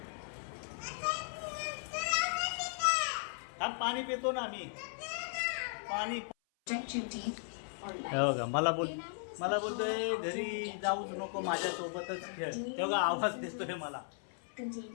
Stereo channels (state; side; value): silent; right; 53 dB below the other